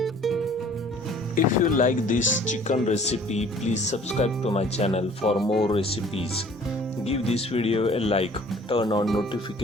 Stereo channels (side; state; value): both; normal; correlation 0.52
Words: If you like this chicken recipe, please subscribe to my channel for more recipes. Give this video a like, turn on